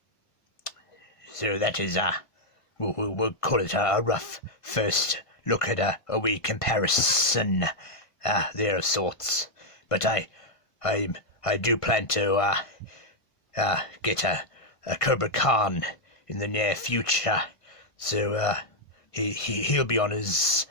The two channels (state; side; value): late; right; 1.4 ms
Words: So that is we'll call it a rough first look at a wee comparison there of sorts. But I do plan to get a Cobra Khan in the near future. So he'll be on his